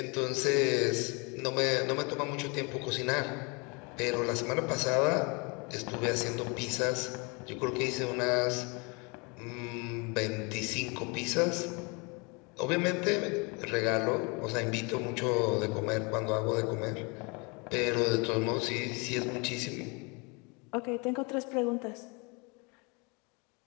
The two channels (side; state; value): right; quieter; 30.4 dB